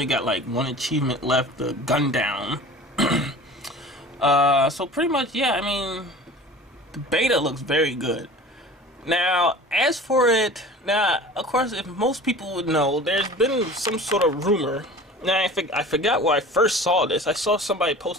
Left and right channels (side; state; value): both; normal; correlation 0.40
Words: got like one achievement left, the gun down. So pretty much, yeah, I mean, the beta looks very good. Now, as for it, of course, if most people would know, there's been some sort of rumor. Now, I forgot where I first saw this. I saw somebody